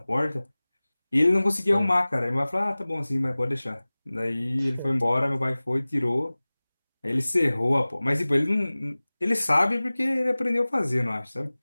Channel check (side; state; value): both; inverted; correlation -0.99